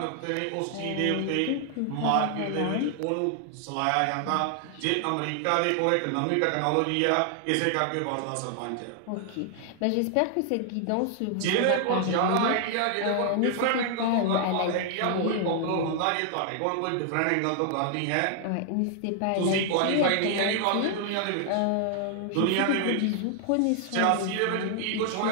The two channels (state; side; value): different; both; correlation 0.00